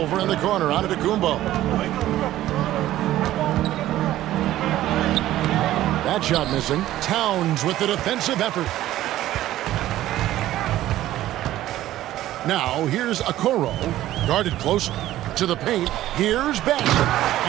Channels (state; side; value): quieter; left; 14.2 dB